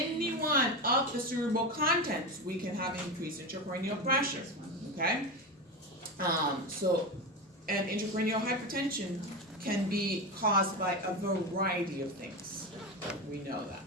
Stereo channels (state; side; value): normal; both; correlation 0.19